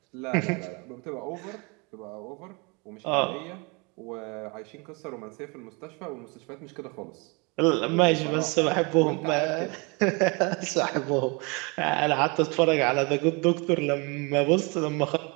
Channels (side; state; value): left; quieter; 29.8 dB